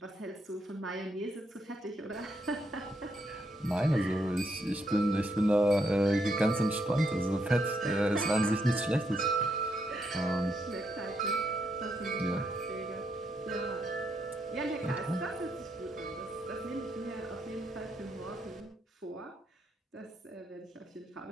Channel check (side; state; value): both; normal; correlation 0.78